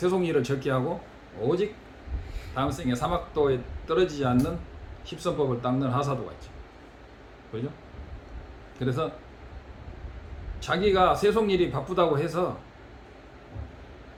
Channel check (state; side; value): identical; both; correlation 1.00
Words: 적게 하고 오직 다음 생에 사막도에 떨어지지 않는 십선법을 닦는 하사도가 있죠. 그죠? 그래서 자기가 세속일이 바쁘다고 해서